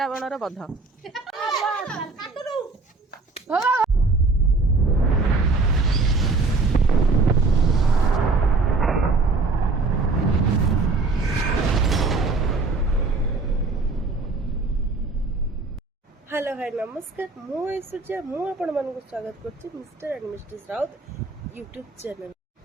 बध हेलो हाय नमस्कार मु ऐश्वर्या मु आपण मानक स्वागत करछि mister and mistress Raut YouTube channel.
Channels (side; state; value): left; quieter; 3.7 dB